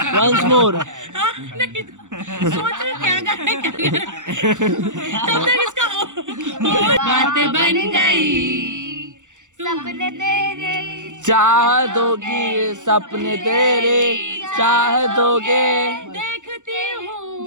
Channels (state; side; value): late; left; 0.86 ms